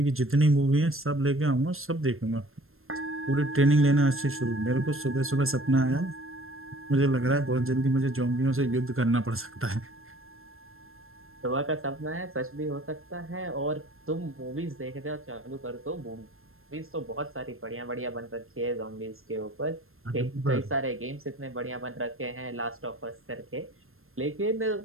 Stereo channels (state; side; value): late; left; 0.61 ms